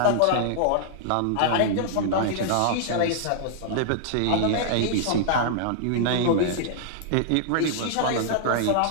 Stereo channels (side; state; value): both; different; correlation -0.01